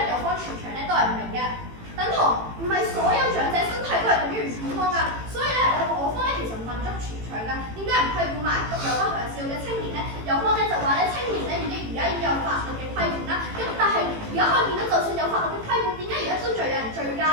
有方全場咧都係唔明嘅。等同唔係所有長者身體都係等於唔健康㗎，所以咧我方咧其實問足全場㗎，點解唔批管埋有不良嗜好嘅青年咧？有方咧就話咧青年咧而家已經有法律嘅規管啦，咁但係而家可以見到，就算有法律嘅規管，點解而家都仲有人醉駕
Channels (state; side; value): late; left; 18 ms